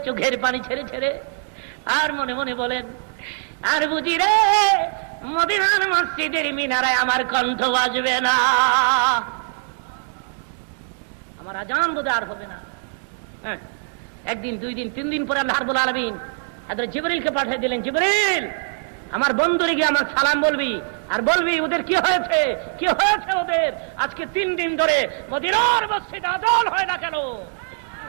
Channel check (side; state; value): left; silent; digital silence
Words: চোখের পানি ছেড়ে ছেড়ে, আর মনে মনে বলেন, আর বুঝি রে মদিনার মসজিদের মিনারায় আমার কণ্ঠ বাজবে না, আমার আজান বোধ আর হবে না। হ্যাঁ, একদিন, দুই দিন, 3 দিন পরে আল্লাহ রাব্বুল আলামিন হযরত জিবরীলকে পাঠিয়ে দিলেন, জিবরীল আমার বন্ধুরে গিয়ে আমার সালাম বলবি, আর বলবি ওদের কি হয়েছে, কি হয়েছে ওদের, আজকে 3 দিন ধরে মদিনার মসজিদে আজান হয় না কেন।